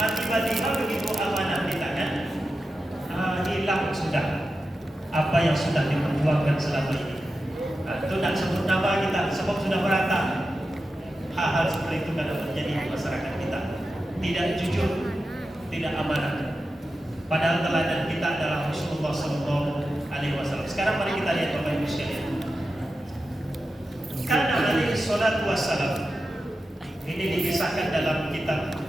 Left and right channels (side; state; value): both; normal; correlation 0.91